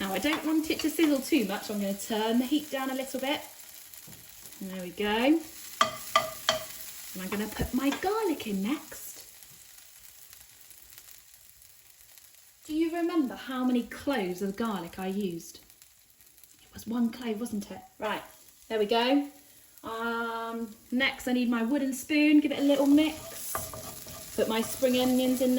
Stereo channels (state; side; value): identical; both; correlation 1.00